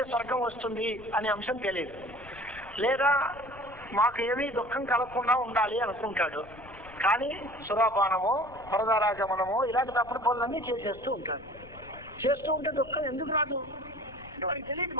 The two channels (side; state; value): left; noise; rumble, 20 dB below the sound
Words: స్వర్గం వస్తుంది అనే అంశం తెలియదు. లేదా మాకు ఏమీ దుఃఖం కలగకుండా ఉండాలి అనుకుంటాడు. కానీ సురాపానమో పరదారాగమనమో ఇలాంటి తప్పుడు పనులన్నీ చేసేస్తూ ఉంటాడు. చేస్తూ ఉంటే దుఃఖం ఎందుకు రాదు? వాడికి తెలియదు